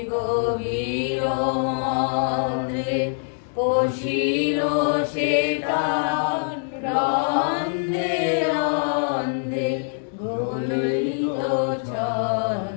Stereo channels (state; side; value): silent; right; digital silence